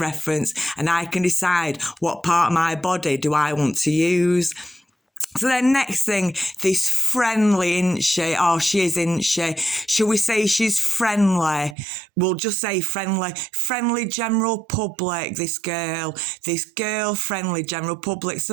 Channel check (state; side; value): drops out; left; at 11.8 s